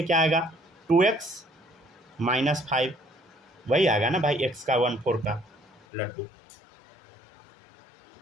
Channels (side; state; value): right; drops out; at 5.9 s